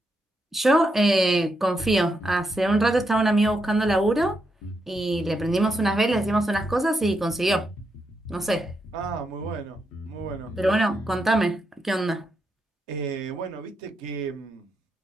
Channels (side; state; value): both; normal; correlation 0.83